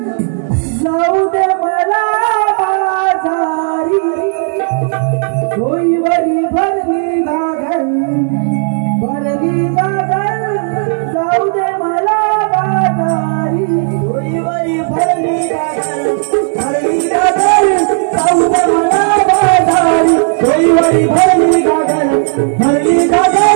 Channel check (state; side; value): silent; left; 55 dB below the other